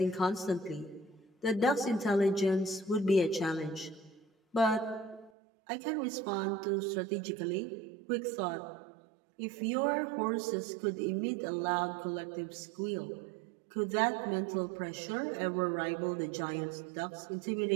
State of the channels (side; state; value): left; drops out; at 5.3 s